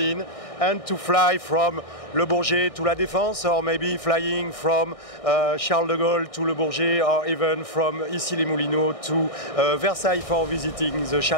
and to fly from Le Bourget to La Défense, or maybe flying from Charles de Gaulle to Le Bourget, or even from Issy-les-Moulineaux to Versailles for visiting the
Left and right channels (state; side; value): late; right; 1.6 ms